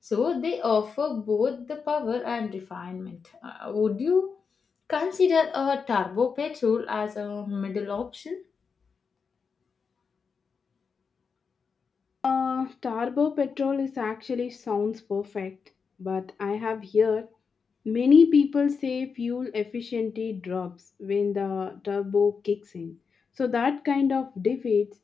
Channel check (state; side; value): quieter; right; 5.6 dB